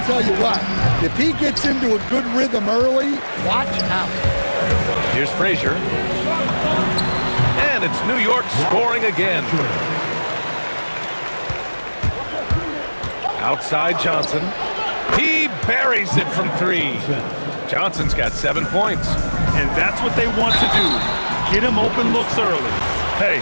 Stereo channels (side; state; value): both; inverted; correlation -1.00